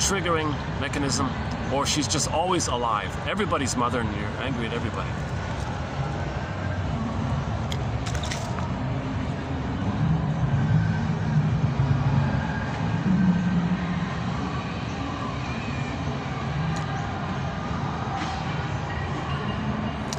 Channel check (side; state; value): both; identical; correlation 1.00